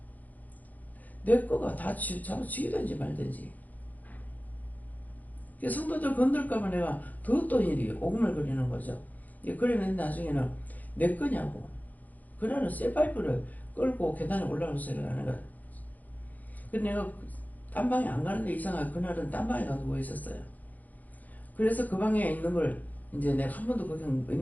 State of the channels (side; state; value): right; late; 0.080 ms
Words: 내 거가 다 잡아치기든지 말든지. 성도들 건들까봐 내가 더 어떤 일이 오금을거리는 거죠. 그러면 나중에는 내 거냐고. 그날은 쇠파이프를 끌고 계단에 올라오는 소리가 하는 거야. 그래서 내가 딴 방에 안 가는데 이상하게 그날은 딴 방에 가서 누워 있었어요. 그래서 그 방에 있는 걸 이제 내가 한 번도 거기